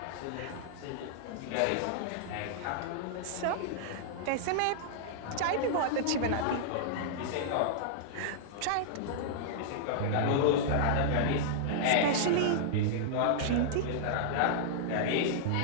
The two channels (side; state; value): both; different; correlation -0.01